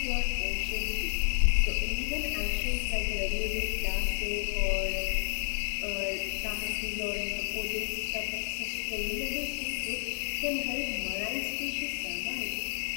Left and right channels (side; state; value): right; silent; digital silence